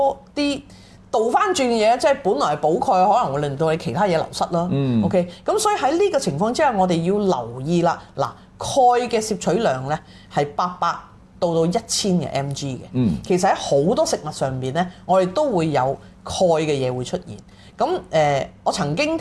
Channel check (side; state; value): both; identical; correlation 1.00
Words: 啲倒翻轉嘅嘢，即係本來係補鈣，可能會令到你其他嘢流失啦。OK， 咁所以喺呢個情況之下，我哋要留意啦。嗱，鈣嘅攝取量咧係800到1000嘅 mg 嘅，其實喺好多食物上邊咧，我哋都會有鈣嘅嘢會出現。咁我曾經